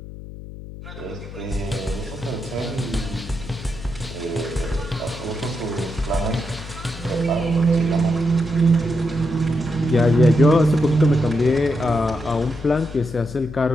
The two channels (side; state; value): left; noise; hum, 13 dB below the sound